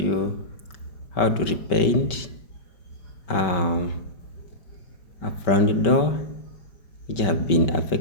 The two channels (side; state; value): right; late; 5.2 ms